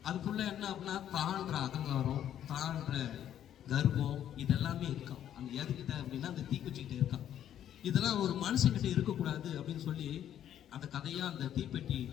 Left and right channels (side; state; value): right; quieter; 10.6 dB